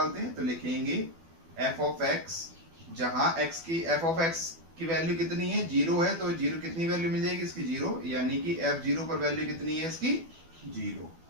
हैं, तो लिखेंगे एफ ऑफ एक्स, जहां एक्स की एफ ऑफ एक्स की वैल्यू कितनी है, 0 है, तो 0 कितनी वैल्यू मिल जाएगी इसकी 0, यानी कि एफ 0 पर वैल्यू कितनी है इसकी 0,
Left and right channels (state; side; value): late; left; 12 ms